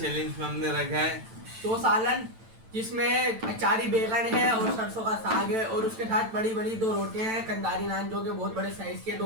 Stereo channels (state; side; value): late; left; 9.0 ms